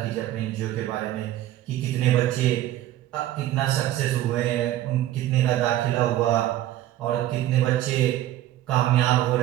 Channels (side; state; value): left; quieter; 13.6 dB